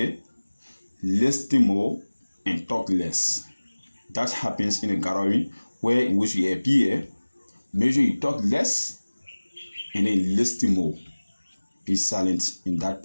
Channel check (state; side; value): inverted; both; correlation -1.00